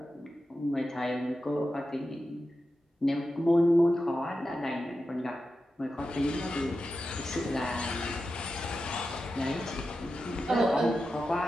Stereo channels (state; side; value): normal; both; correlation 0.91